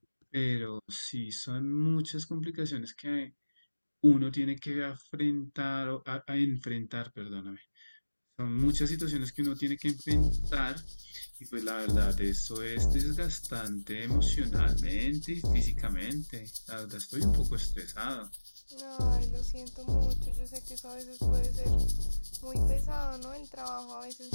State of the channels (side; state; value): both; inverted; correlation -1.00